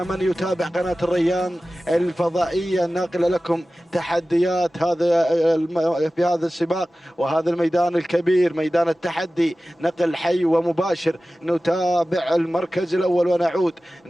يتابع قناة الريان الفضائية الناقلة لكم تحديات في هذا السباق وهذا الميدان الكبير، ميدان التحدي، نقل حي ومباشر، نتابع المركز الأول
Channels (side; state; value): both; normal; correlation 0.96